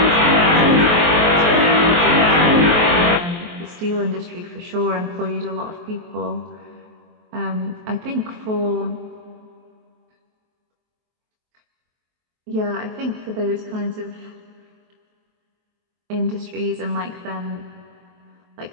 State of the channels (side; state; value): left; late; 23 ms